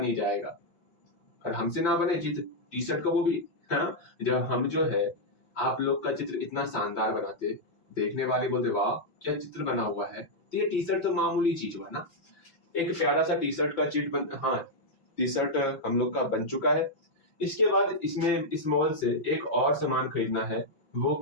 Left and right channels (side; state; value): right; late; 5.8 ms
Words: ही जाएगा। और हमसे ना बने चित्र टी शर्ट का वो भी। हाँ, जब हम जो है आप लोग का चित्र इतना शानदार बनाते, देखने वाले बोलते वाह क्या चित्र बना हुआ है। तो ये टी शर्ट तो मामूली चीज हुआ ना। एक प्यारा सा टी शर्ट का चिट बन हाँ, टी शर्ट हम लोग का बन चुका है। इसके बाद इसमें इस मॉल से एक और सामान खरीदना है। वो